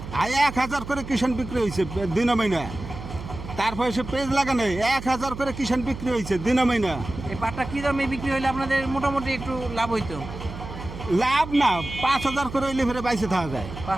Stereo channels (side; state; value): right; noise; hum, 11 dB below the sound